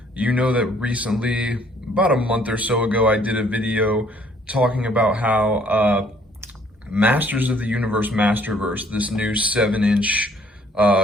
you know that recently, about a month or so ago, I did a video talking about how Masters of the Universe Masterverse, this new 7-inch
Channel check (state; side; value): normal; both; correlation 0.61